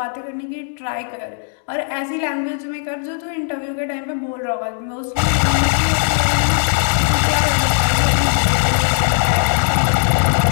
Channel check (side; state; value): right; silent; digital silence